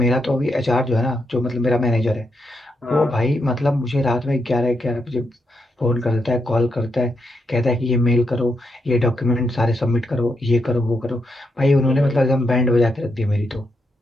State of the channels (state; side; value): normal; both; correlation 0.81